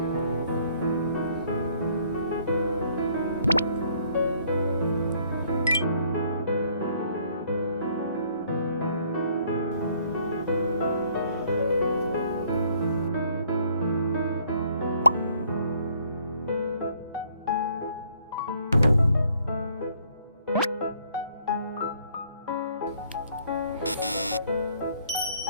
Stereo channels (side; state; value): both; inverted; correlation -0.63